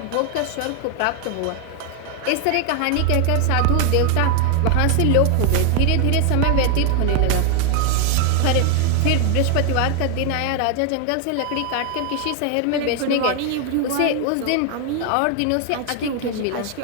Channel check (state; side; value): different; both; correlation 0.00